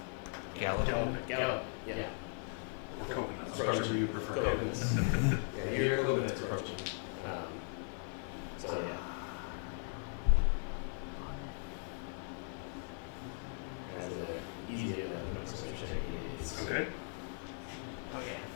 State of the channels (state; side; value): silent; right; 52 dB below the other